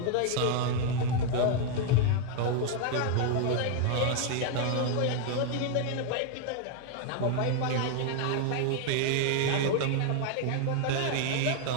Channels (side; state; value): both; different; correlation 0.00